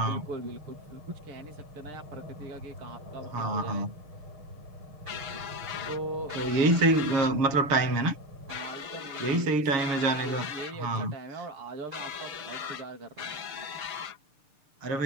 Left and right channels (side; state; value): left; late; 6.7 ms